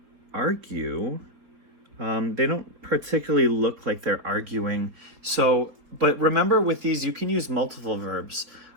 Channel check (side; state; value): left; late; 4.1 ms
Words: argue. They don't particularly look like they're arguing. So, but remember with these, you can use multiple verbs.